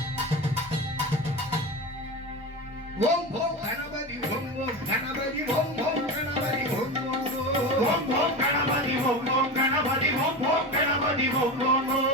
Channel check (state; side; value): normal; both; correlation 0.24